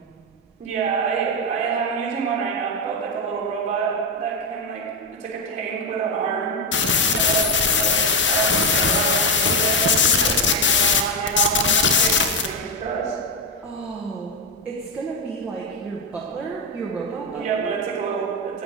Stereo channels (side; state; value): both; normal; correlation 0.07